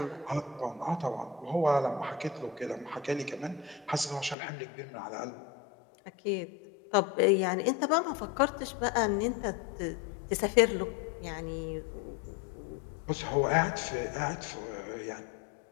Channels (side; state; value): right; drops out; at 4.4 s